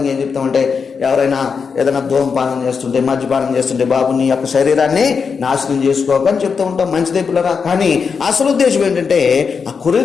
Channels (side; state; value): right; quieter; 5.7 dB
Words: ఏం చెప్తామంటే, ఎవరైనా ఏదైనా ధూమపానం చేస్తుంటే, మద్యపానం చేస్తుంటే, బాబు నీ యొక్క శరీరాన్ని నాశనం చేసుకోకని చెప్తూ ఉంటాం, మంచిదే పిల్లరా. కానీ అసలు ఉద్దేశం ఏంటంటే, ఆ